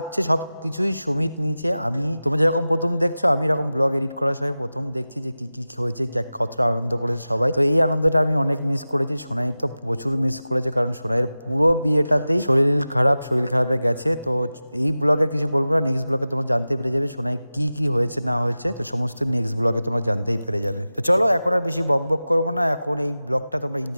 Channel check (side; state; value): both; inverted; correlation -0.95